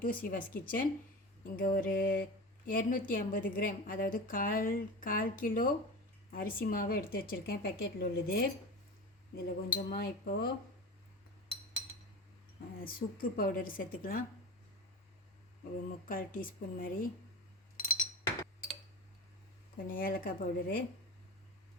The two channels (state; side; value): normal; both; correlation 0.29